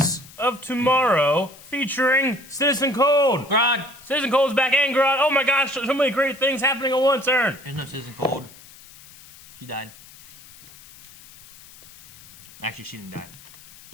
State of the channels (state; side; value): noise; left; hiss, 21 dB below the sound